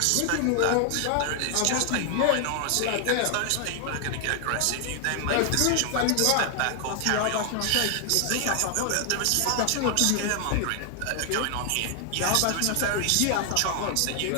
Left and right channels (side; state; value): both; different; correlation 0.00